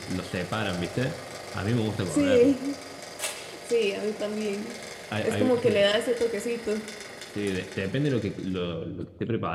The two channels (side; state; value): both; identical; correlation 1.00